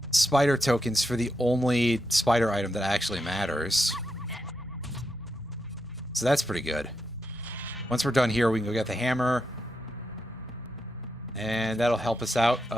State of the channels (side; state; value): both; normal; correlation 0.84